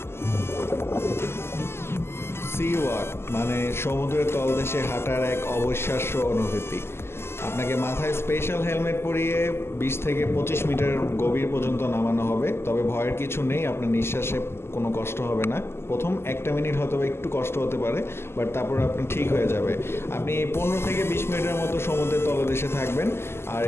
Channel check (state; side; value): late; right; 0.12 ms